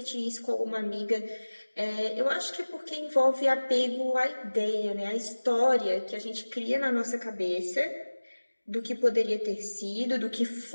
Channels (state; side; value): inverted; both; correlation -1.00